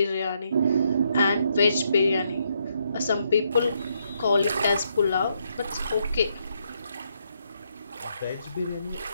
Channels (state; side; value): inverted; both; correlation -0.76